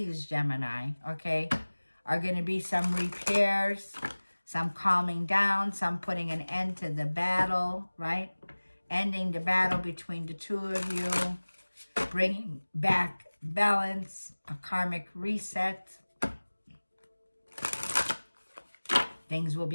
Gemini, okay, are going to be some repairs, some calming down, some putting an end to the battle, right? Ending the battle between the two of you, bringing back balance, a karmic reset. Things will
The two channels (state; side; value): inverted; both; correlation -1.00